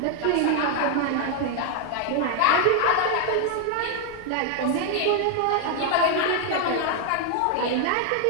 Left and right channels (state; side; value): different; both; correlation 0.00